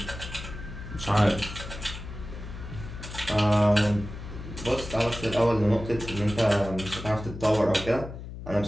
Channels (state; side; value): noise; left; hum, 11 dB below the sound